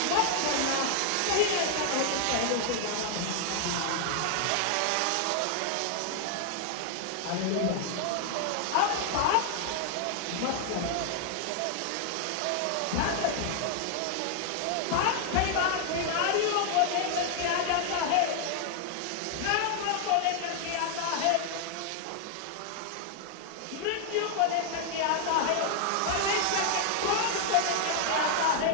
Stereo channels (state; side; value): different; both; correlation 0.00